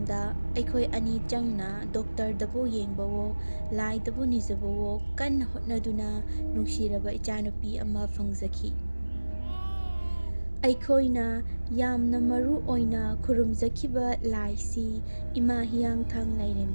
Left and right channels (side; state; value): both; inverted; correlation -1.00